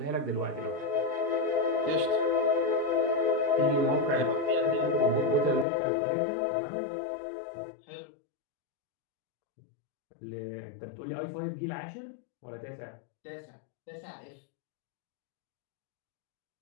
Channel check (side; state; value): right; drops out; at 5.7 s